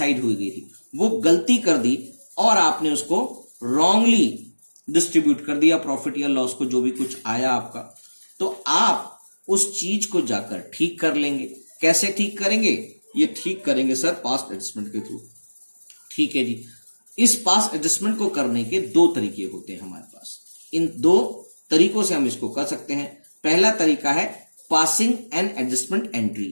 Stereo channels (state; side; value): inverted; both; correlation -1.00